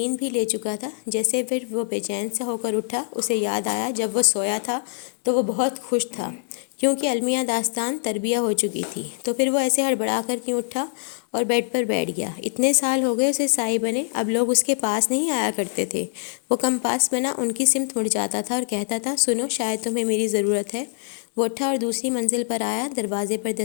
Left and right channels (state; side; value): silent; right; digital silence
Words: بھی لے چکا تھا۔ جیسے پھر وہ بے چین سے ہو کر اٹھا، اسے یاد آیا جب وہ سویا تھا تو وہ بہت خوش تھا کیونکہ المیہ داستان تربیہ ہو چکی تھی۔ تو پھر وہ ایسے ہڑبڑا کر کیوں اٹھا اور بیڈ پر بیٹھ گیا؟ اتنے سال ہو گئے اسے سائی بنے، اب لوگ اس کے پاس نہیں آیا کرتے تھے۔ وہ کم پاس بنا ان کی سمت مڑ جاتا تھا اور کہتا تھا سنو شاید تمہیں میری ضرورت ہے۔ وہ اٹھا اور دوسری منزل پر آیا، دروازے پر